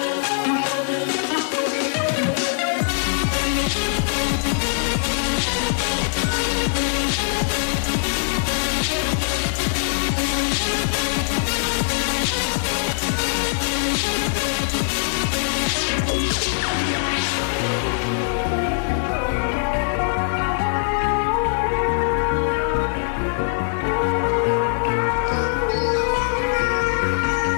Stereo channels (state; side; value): silent; right; digital silence